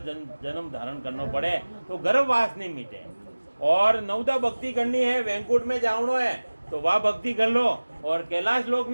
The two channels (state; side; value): inverted; both; correlation -1.00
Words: धारण करना पड़े तो गर्भवास नहीं मिटे. और 9 भक्ति करनी है. वैकुंठ में जावनो है तो वह भक्ति कर लो. और कैलाश लोक